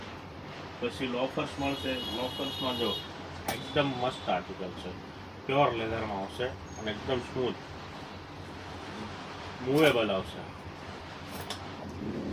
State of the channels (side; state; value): both; identical; correlation 1.00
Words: પછી લોફર્સ મળશે. લોફર્સમાં જો એકદમ મસ્ત આર્ટિકલ છે, પ્યોર લેધરમાં આવશે અને એકદમ સ્મૂથ મૂવેબલ આવશે,